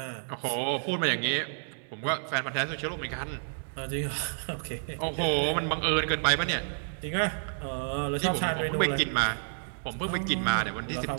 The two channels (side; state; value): left; silent; digital silence